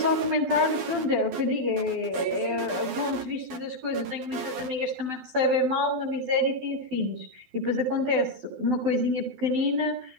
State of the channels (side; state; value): left; late; 12 ms